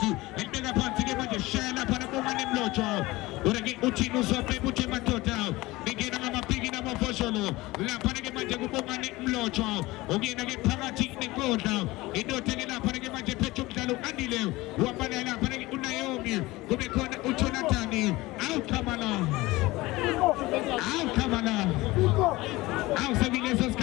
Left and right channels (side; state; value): right; quieter; 20.1 dB